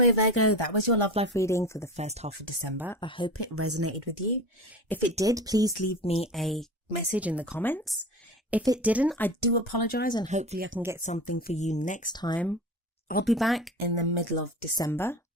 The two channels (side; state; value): both; normal; correlation 0.31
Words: Virgo, that was your love life reading for the first half of December. I hope it resonated with you. If it did, please leave me a message in the comments. If it didn't, I do apologise, and hopefully I can get something for you next time. I'll be back in the middle of December.